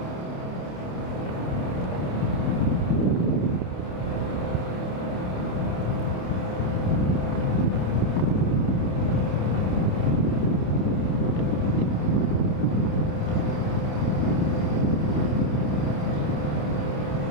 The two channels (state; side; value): late; right; 28 ms